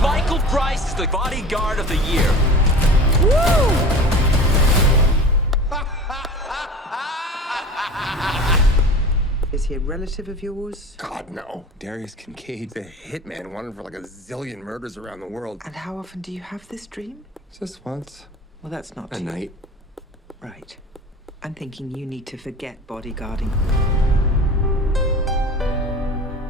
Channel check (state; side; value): normal; both; correlation 0.38